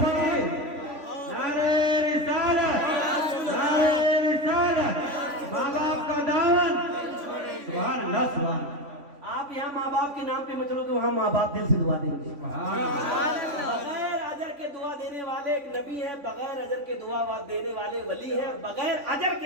आप यहाँ माँ बाप के नाम पे मत चलो तो वहाँ माँ बाप दिल से दुआ देंगे। बगैर अजर के दुआ देने वाले एक नबी है, बगैर अजर के दुआ देने वाले वली है, बगैर अजर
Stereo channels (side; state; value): left; late; 3.5 ms